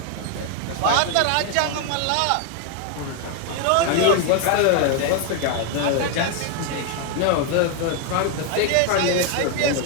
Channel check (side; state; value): both; different; correlation 0.01